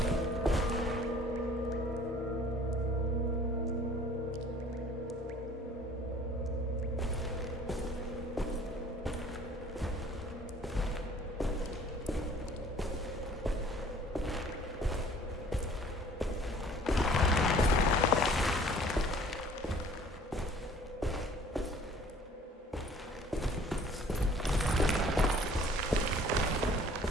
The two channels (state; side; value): normal; both; correlation 0.52